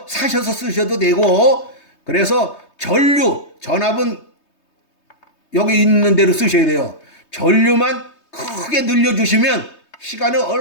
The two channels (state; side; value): late; right; 3.2 ms